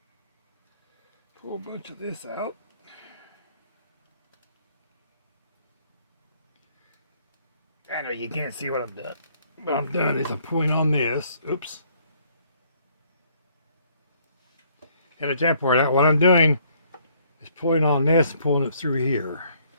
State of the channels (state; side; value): inverted; both; correlation -0.64